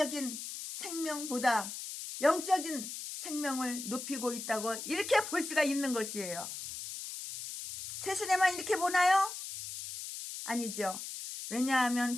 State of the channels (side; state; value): left; noise; hiss, 8 dB below the sound